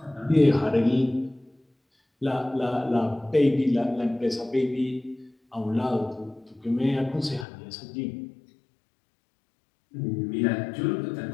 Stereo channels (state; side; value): drops out; right; at 7.5 s